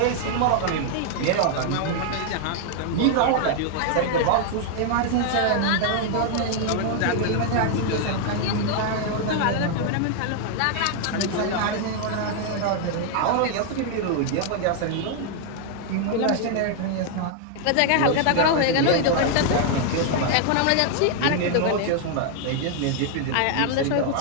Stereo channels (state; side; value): different; both; correlation 0.00